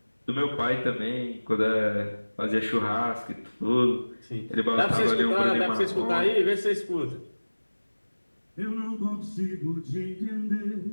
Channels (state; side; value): inverted; both; correlation -1.00